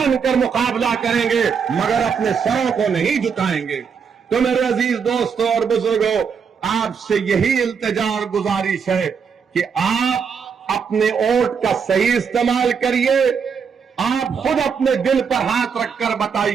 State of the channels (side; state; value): left; quieter; 6.4 dB